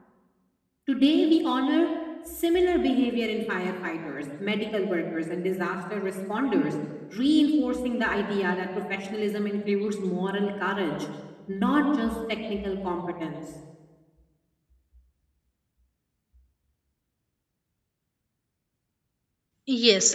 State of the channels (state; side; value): identical; both; correlation 1.00